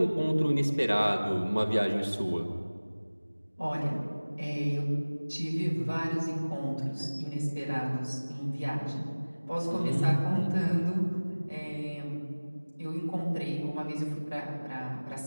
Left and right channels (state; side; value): inverted; both; correlation -1.00